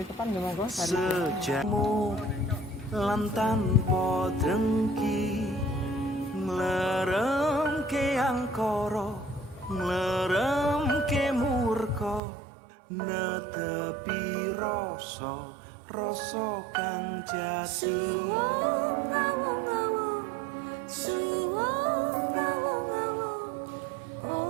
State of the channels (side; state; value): left; drops out; at 12.2 s